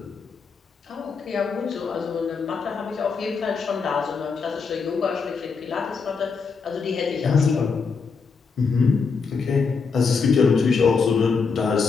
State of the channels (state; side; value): quieter; right; 5.2 dB